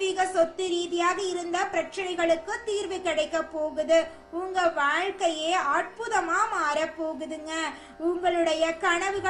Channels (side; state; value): both; identical; correlation 1.00